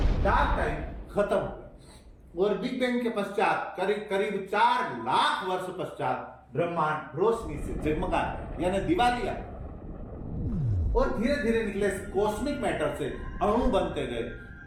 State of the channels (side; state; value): both; identical; correlation 1.00